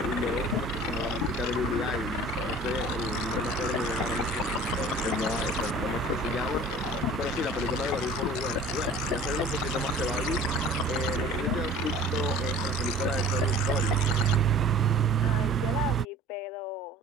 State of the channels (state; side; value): normal; both; correlation 0.46